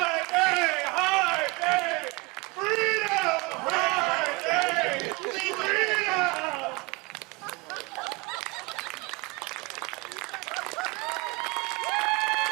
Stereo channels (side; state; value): left; quieter; 26.3 dB